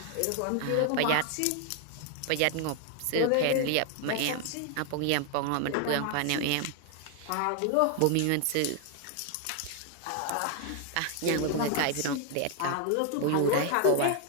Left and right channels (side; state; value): both; different; correlation 0.00